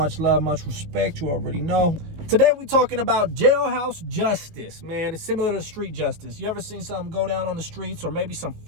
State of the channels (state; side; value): late; left; 19 ms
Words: love, much respect. You already know. Today we're talking about jailhouse justice, man. It's similar to street justice. You ever seen something go down on the streets, or maybe some